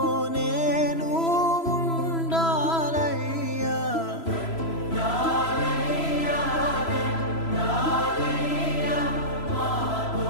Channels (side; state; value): right; late; 3.0 ms